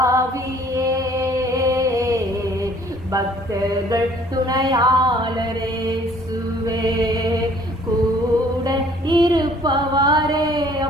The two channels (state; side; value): normal; both; correlation 0.56